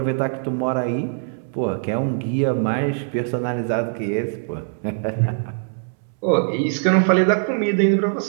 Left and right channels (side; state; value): left; silent; 64 dB below the other